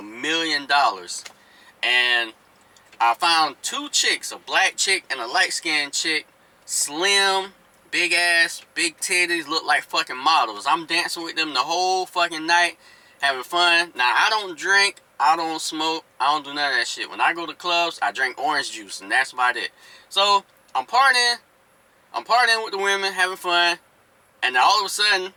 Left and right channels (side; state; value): both; identical; correlation 1.00